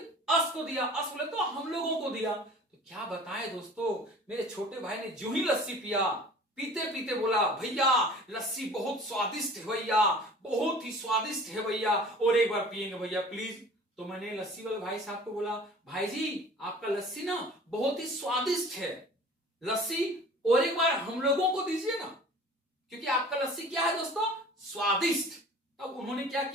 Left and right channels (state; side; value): normal; both; correlation 0.45